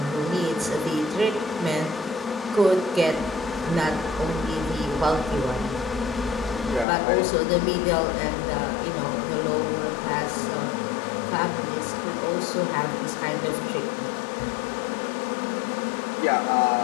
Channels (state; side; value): drops out; right; at 6.9 s